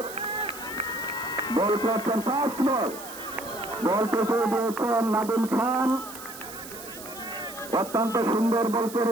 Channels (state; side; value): noise; right; hiss, 14 dB below the sound